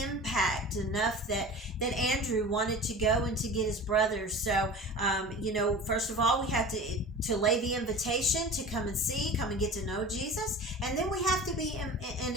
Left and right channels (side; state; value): both; normal; correlation 0.37